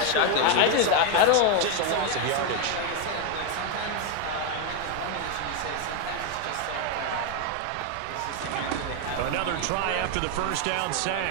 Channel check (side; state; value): both; different; correlation 0.01